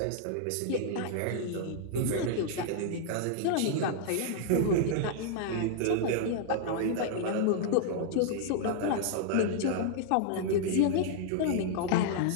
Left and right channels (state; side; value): different; both; correlation -0.01